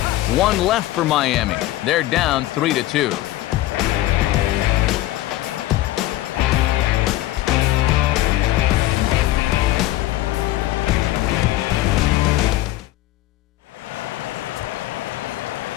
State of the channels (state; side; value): quieter; right; 15.8 dB